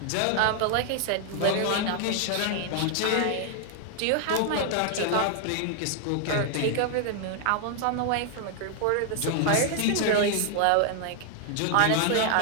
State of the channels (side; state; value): both; different; correlation 0.00